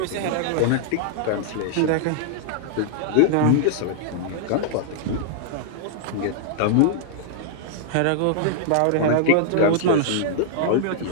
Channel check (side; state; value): both; different; correlation -0.01